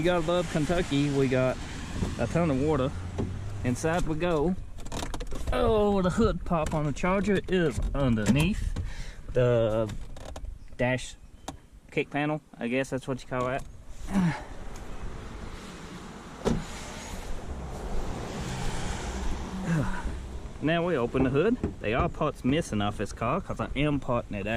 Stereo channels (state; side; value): identical; both; correlation 1.00